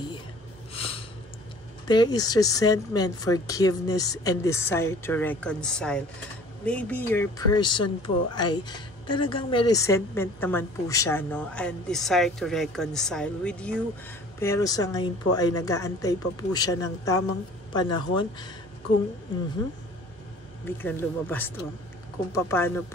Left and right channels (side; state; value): both; normal; correlation 0.49